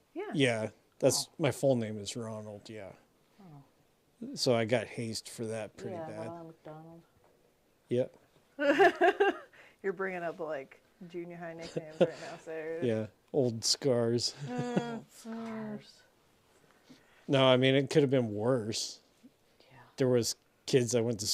Yeah. going. Yeah, that's my full name is Ronald. Yeah. Oh. So I got hazed for that pretty Yeah, bad. Ronald McDonald. Yep. You're bringing up like junior high nicknames right now, Sarah. Yeah. Old scars. Scars. No, I mean it could have been worse. Yeah. There was kids I went to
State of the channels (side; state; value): both; identical; correlation 1.00